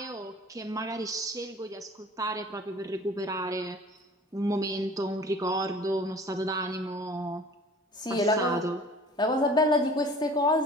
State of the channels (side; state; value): both; normal; correlation 0.47